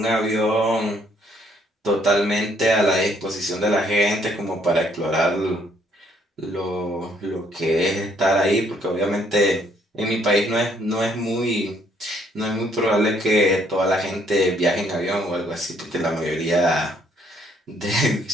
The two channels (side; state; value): both; normal; correlation 0.66